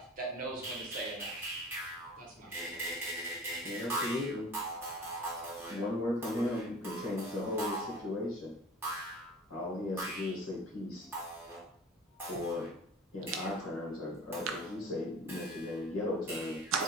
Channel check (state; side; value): normal; both; correlation 0.42